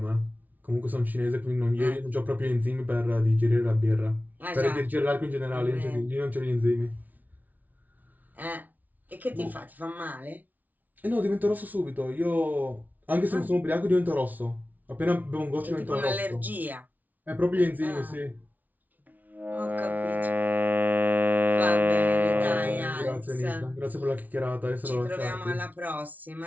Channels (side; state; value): left; late; 0.078 ms